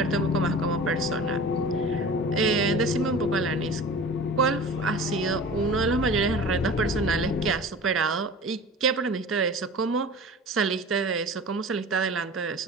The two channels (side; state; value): both; normal; correlation 0.38